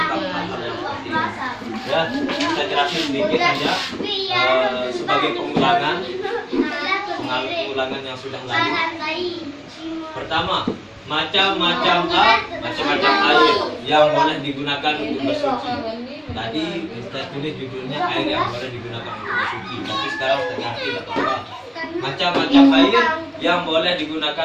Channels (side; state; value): both; identical; correlation 1.00